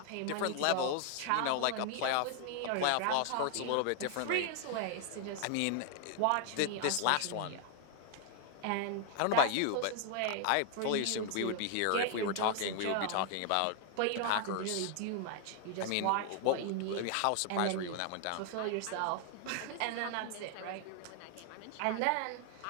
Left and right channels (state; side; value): different; both; correlation 0.00